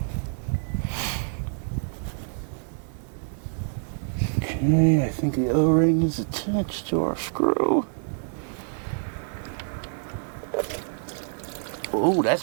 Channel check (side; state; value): left; silent; digital silence